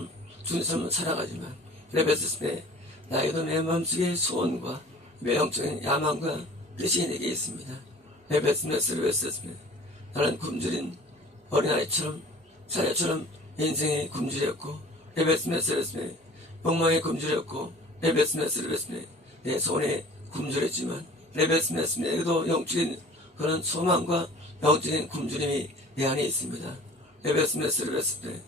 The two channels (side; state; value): both; normal; correlation 0.46